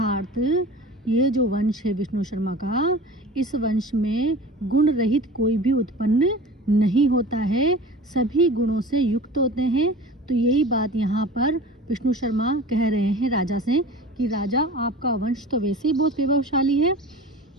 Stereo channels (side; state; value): both; normal; correlation 0.38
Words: ये जो वंश है विष्णु शर्मा का, इस वंश में गुण रहित कोई भी उत्पन्न नहीं होता है, सभी गुणों से युक्त होते हैं। तो यही बात यहाँ पर विष्णु शर्मा कह रहे हैं राजा से कि राजा, आपका वंश तो वैसे ही बहुत वैभवशाली है,